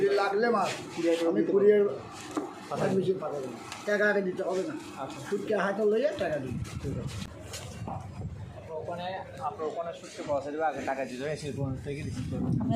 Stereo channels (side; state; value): both; identical; correlation 1.00